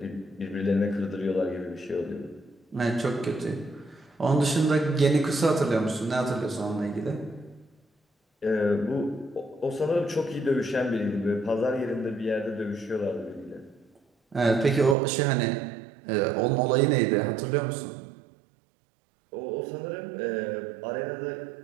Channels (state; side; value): drops out; left; at 15.0 s